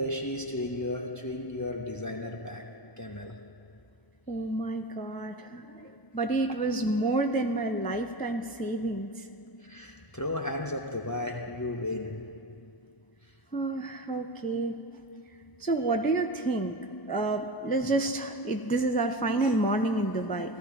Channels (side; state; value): right; late; 1.0 ms